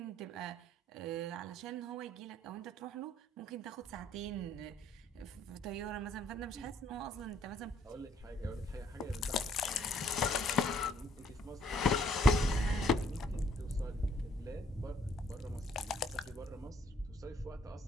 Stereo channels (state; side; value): normal; both; correlation 0.65